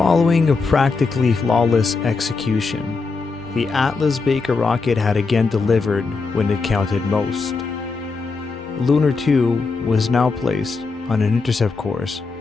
a practically flawless execution, the Atlas Baker rocket had again delivered when it counted most. Lunar 2 was now placed on an intercept course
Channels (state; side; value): quieter; right; 4.3 dB